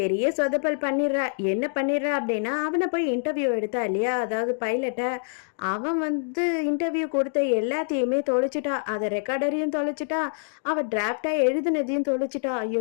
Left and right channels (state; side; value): silent; right; digital silence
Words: சொதப்பல் பண்ணிடுறா. என்ன பண்ணிடுறா அப்படின்னா, அவனை போய் இன்டர்வியூ எடுத்தா இல்லையா, அதாவது பைலட்டை, அவன் வந்து இன்டர்வியூ கொடுத்த எல்லாத்தையுமே தொலைச்சிட்டா. அதை ரெக்கார்டரையும் தொலைச்சிட்டா, அவ டிராப்டா எழுதுனதையும் தொலைச்சிட்டா.